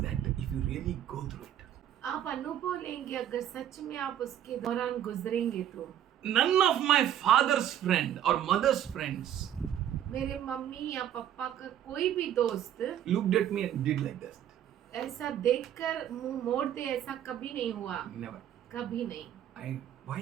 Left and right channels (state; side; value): quieter; left; 10.7 dB